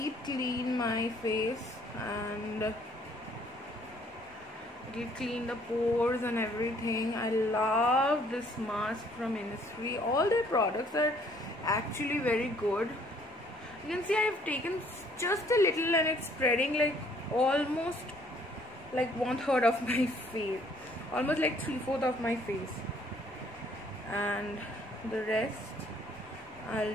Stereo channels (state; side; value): normal; both; correlation 0.61